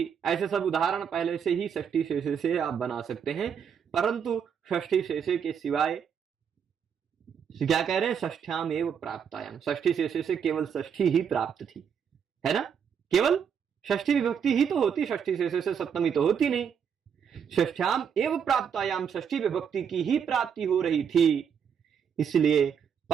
ऐसे सब उदाहरण पहले से ही षष्ठी शेषे से आप बना सकते हैं। परंतु षष्ठी शेषे के सिवाय क्या कह रहे हैं? षष्ठ्यामेव प्राप्तायाम, षष्ठी शेषे से केवल षष्ठी ही प्राप्त थी, है ना। केवल षष्ठी विभक्ति ही तो होती, षष्ठी शेषे से सप्तमी तो होती नहीं। षष्ठ्याम एव प्राप्तायाम, षष्ठी विभक्ति की ही प्राप्ति हो रही थी। इसलिए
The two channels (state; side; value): quieter; left; 7.5 dB